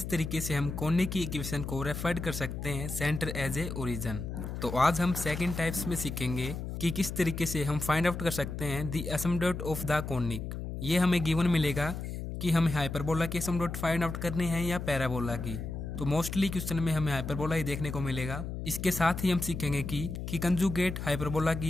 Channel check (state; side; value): noise; left; hum, 6 dB below the sound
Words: तरीके से हम कोने की इक्वेशन को रेफर कर सकते हैं सेंटर एज ए ओरिजिन। तो आज हम सेकंड टाइप्स में सीखेंगे कि किस तरीके से हम फाइंड आउट कर सकते हैं the asymptote of the conic. ये हमें गिवन मिलेगा कि हमें हाइपरबोला की एसिम्पटोट फाइंड आउट करनी है या पैराबोला की। तो मोस्टली क्वेश्चन में हमें हाइपरबोला ही देखने को मिलेगा। इसके साथ ही हम सीखेंगे कि कंजुगेट हाइपरबोला